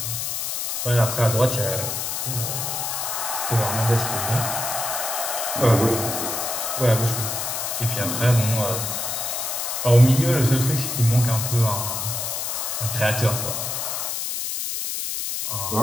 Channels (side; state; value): left; noise; hiss, 2 dB below the sound